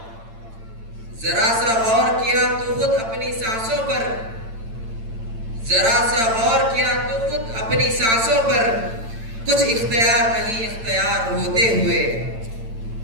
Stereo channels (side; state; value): left; late; 8.9 ms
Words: जरा सा गौर किया तो खुद अपनी सांसों पर। जरा सा गौर किया तो खुद अपनी सांसों पर। कुछ इख्तियार नहीं इख्तियार होते हुए।